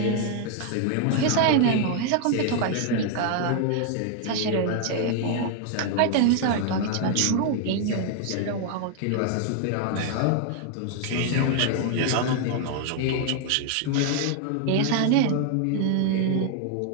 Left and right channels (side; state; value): both; different; correlation 0.00